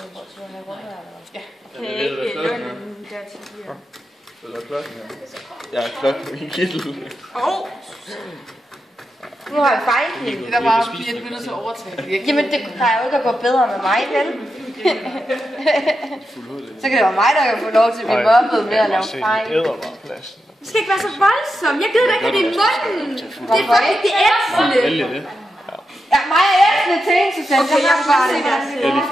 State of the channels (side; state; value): both; normal; correlation 0.88